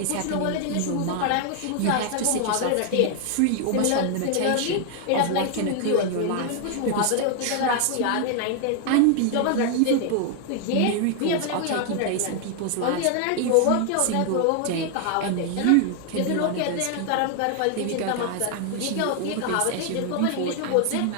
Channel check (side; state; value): both; different; correlation 0.00